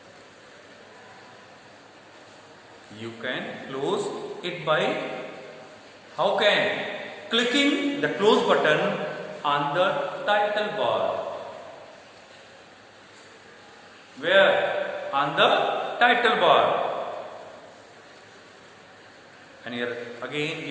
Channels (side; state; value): both; identical; correlation 1.00